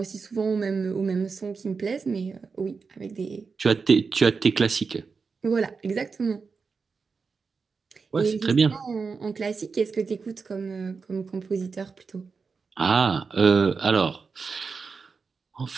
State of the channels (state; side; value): quieter; left; 5.0 dB